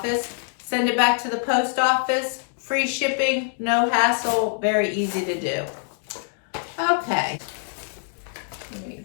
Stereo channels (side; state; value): right; silent; digital silence